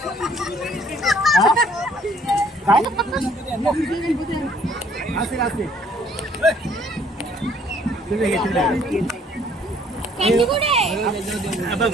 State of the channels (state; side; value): normal; both; correlation 0.61